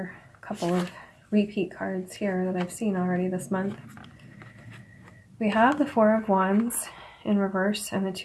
couple of repeat cards here that I've seen already this month. We have the Four of Wands in reverse and the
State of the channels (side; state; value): both; identical; correlation 1.00